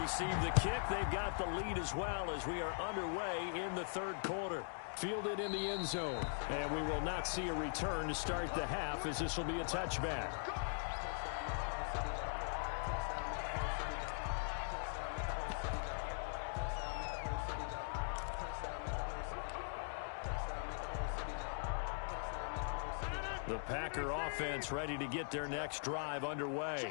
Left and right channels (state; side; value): silent; right; digital silence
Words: the kick. They've got the lead as well as we are underway in the third quarter. Fielded in the end zone. And we will not see a return to start the half as this will be a touchback. The Packer offense ready to get their next drive